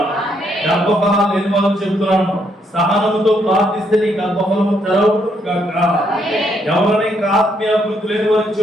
గర్భఫలాలు లేని వాళ్ళు చెప్తున్నాను, సహనంతో ప్రార్థిస్తే నీ గర్భఫలము తెరవబడును గాక. ఎవరైనా ఇంకా ఆత్మీయాభివృద్ధి లేని వారికి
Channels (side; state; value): both; normal; correlation 0.73